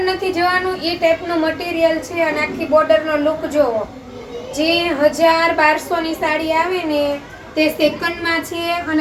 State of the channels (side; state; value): both; identical; correlation 1.00